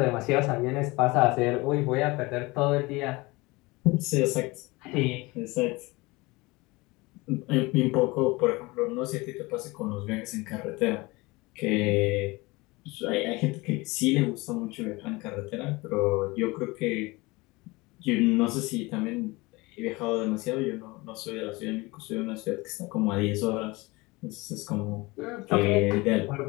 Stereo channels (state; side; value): quieter; right; 23.2 dB